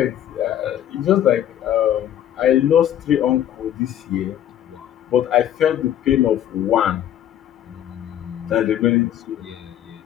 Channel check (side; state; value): right; quieter; 11.0 dB